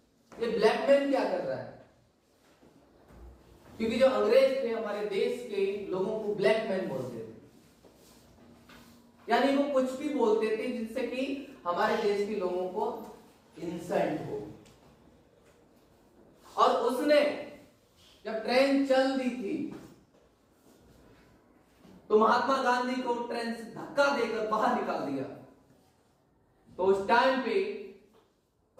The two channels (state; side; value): identical; both; correlation 1.00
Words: ये ब्लैक मैन क्या कर रहा है। क्योंकि जो अंग्रेज थे हमारे देश के लोगों को ब्लैक मैन बोलते थे, यानी वो कुछ भी बोलते थे जिससे कि हमारे देश के लोगों को इंसल्ट हो। और उसने जब ट्रेन चल दी थी तो महात्मा गांधी को ट्रेन से धक्का देकर बाहर निकाल दिया। तो उस टाइम पे